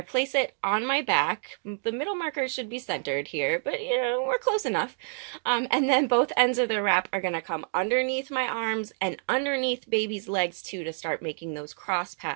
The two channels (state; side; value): silent; left; digital silence